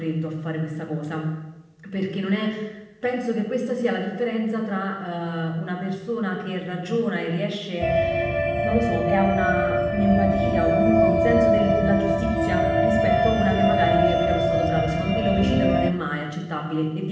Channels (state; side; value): identical; both; correlation 1.00